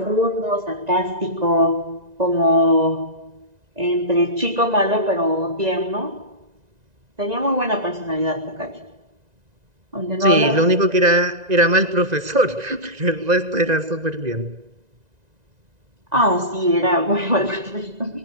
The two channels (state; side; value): late; left; 1.9 ms